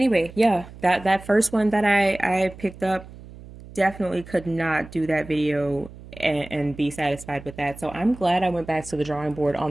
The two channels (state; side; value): noise; right; hum, 17 dB below the sound